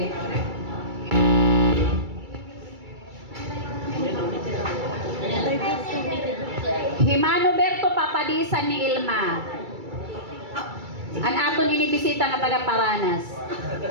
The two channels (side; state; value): left; late; 2.3 ms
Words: Manuberto, papadisan ni Ilma. An aton inibisita nga taga Paranas.